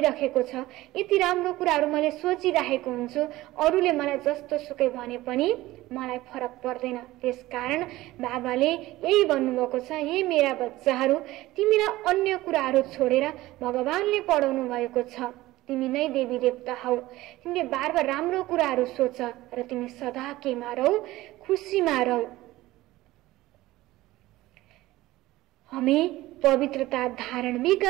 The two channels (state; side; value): quieter; left; 17.5 dB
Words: छ, यति राम्रो कुराहरू मैले सोचिरहेको हुन्छु, अरूले मलाई जस्तो सुकै भने पनि मलाई फरक पर्दैन। त्यसकारण बाबाले यही भन्नुभएको छ, हे मेरा बच्चाहरू, तिमीलाई अन्य कुराहरू छोडेर भगवानले पढाउनु भएको छ, तिमी नै देवी देवता हौ। तिमीले बार बार राम्रो कुराहरू सोच र तिमी सदा केमा रौ? खुसीमा रौ। हमें पवित्रता धारण भी